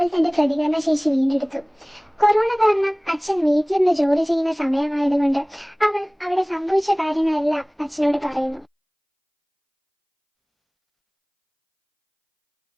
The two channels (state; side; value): identical; both; correlation 1.00